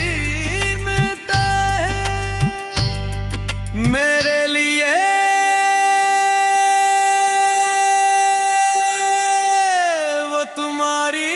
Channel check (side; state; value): both; identical; correlation 1.00